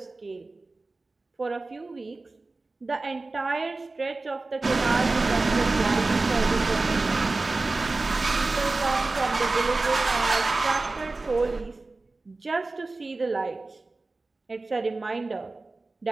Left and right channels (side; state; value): left; quieter; 3.4 dB